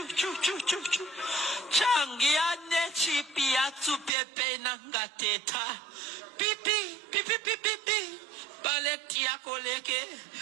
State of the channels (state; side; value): drops out; left; at 4.1 s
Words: changia ne chipia tsupepe nangateta pipi baleti ya koleke